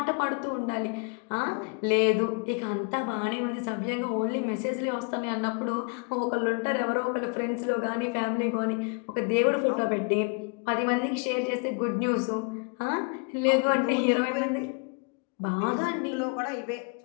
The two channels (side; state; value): right; quieter; 35.2 dB